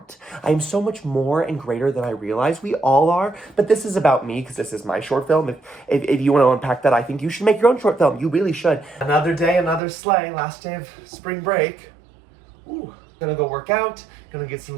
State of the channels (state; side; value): drops out; left; at 9.8 s